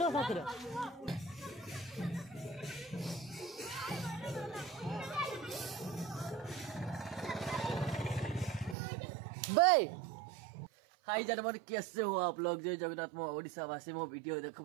हाथ भाई हाई जानवर कैसे हो आप लोग जो जगन्नाथ मो ओडिशा वासी मो वीडियो देखो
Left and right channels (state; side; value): drops out; left; at 8.8 s